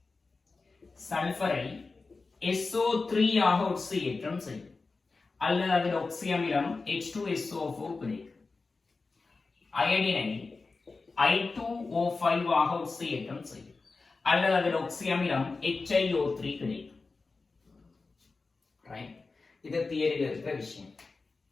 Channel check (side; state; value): right; quieter; 4.0 dB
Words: சல்பரை SO3 ஆக ஒட்சியேற்றம் செய்யும், அல்லது அதில் ஒக்சி அமிலம் H2SO4 கிடைக்கும். அயடினை I2O5 ஆக ஒட்சியேற்றம் செய்யும், அல்லது அதில் ஒக்சி அமிலம் HiO3 கிடைக்கும். ரைட். இது தியரியில் இருக்கிற விஷயம்.